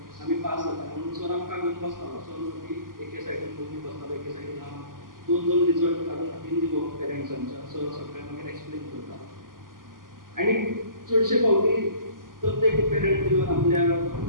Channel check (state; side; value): late; left; 0.91 ms